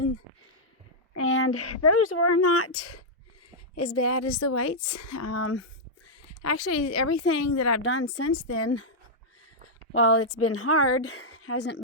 And those were not as bad as the whites. Actually, everything that I've done since then, while it's been hard, hasn't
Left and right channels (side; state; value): both; normal; correlation -0.07